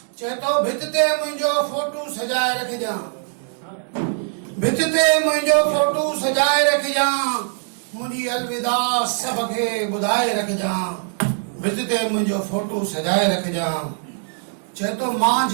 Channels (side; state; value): left; silent; digital silence